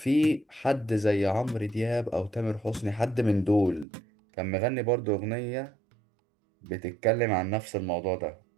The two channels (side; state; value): left; drops out; at 3.9 s